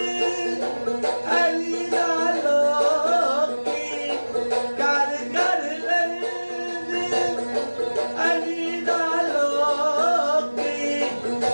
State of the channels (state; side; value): inverted; both; correlation -1.00